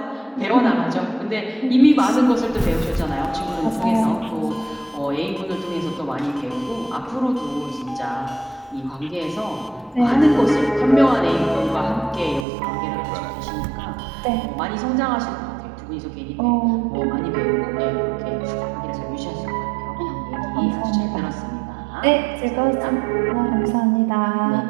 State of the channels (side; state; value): left; drops out; at 12.5 s